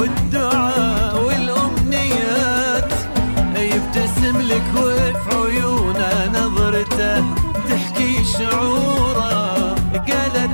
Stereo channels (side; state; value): both; inverted; correlation -1.00